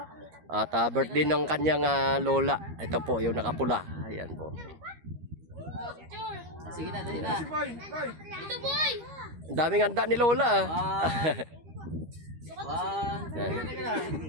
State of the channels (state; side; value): late; left; 13 ms